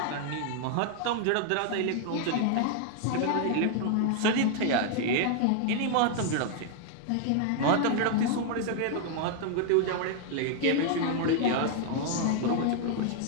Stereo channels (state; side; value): different; both; correlation 0.00